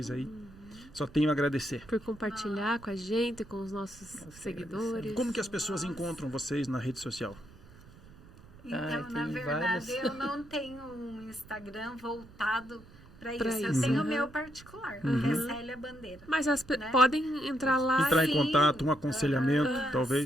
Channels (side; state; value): right; noise; rumble, 21 dB below the sound